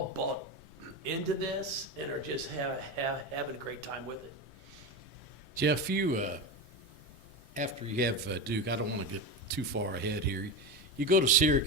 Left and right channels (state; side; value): normal; both; correlation 0.19